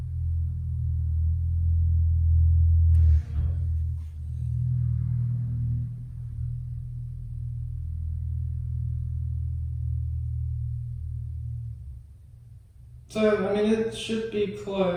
So, I mean, it should be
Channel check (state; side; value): identical; both; correlation 1.00